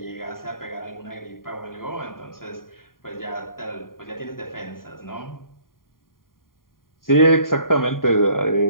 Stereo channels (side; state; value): right; late; 0.91 ms